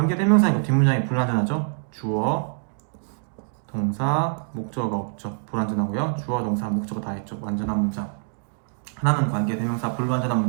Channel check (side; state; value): left; silent; digital silence